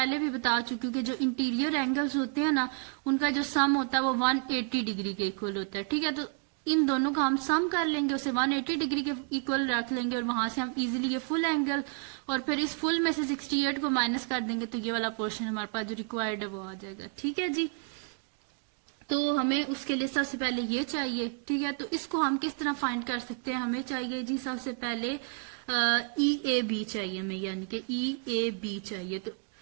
भी बता चुके हैं कि जो इंटीरियर एंगल्स होते हैं ना उनका जो सम होता है वो 180 डिग्री के इक्वल होता है। ठीक है, तो इन दोनों का हम सम कर लेंगे, उसे 180 डिग्री के इक्वल रख लेंगे और वहां से हम इजीली ये फुल एंगल, और फिर इस फुल में से 68 को माइनस कर देंगे तो ये वाला पोर्शन हमारे पास जो रिक्वायर्ड है वो आ जाएगा। ठीक है जी, तो हमें उसके लिए सबसे पहले ये चाहिए। ठीक है, तो इसको हम किस तरह फाइंड कर सकते हैं, हमें चाहिए जी सबसे पहले ई ए बी चाहिए हमें, यानी कि ई ए बी चाहिए। तो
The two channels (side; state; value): left; quieter; 38.7 dB